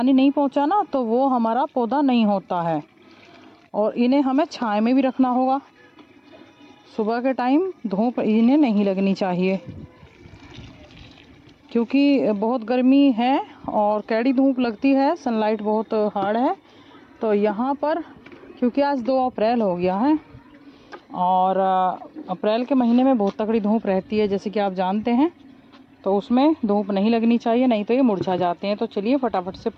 नहीं पहुंचा ना, तो वो हमारा पौधा नहीं होता है। और इन्हें हमें छाया में भी रखना होगा। सुबह के टाइम धूप इन्हें नहीं लगनी चाहिए, क्योंकि बहुत गर्मी है और कैडी धूप लगती है, सनलाइट बहुत हार्ड है। तो यहाँ पर क्योंकि आज 2 अप्रैल हो गया है, और अप्रैल के महीने में बहुत तगड़ी धूप रहती है जैसे कि आप जानते हैं, तो उसमें धूप नहीं लगनी चाहिए, नहीं तो ये मुरझा जाते हैं। तो चलिए फटाफट से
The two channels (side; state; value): both; identical; correlation 1.00